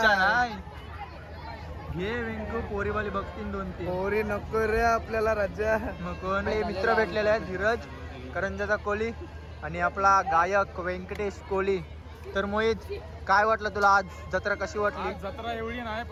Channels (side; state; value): both; identical; correlation 1.00